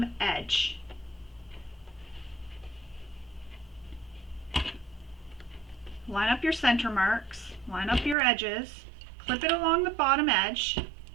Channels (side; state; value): left; drops out; at 8.2 s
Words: edge. Line up your center marks, line up your edges, clip it along the bottom edge,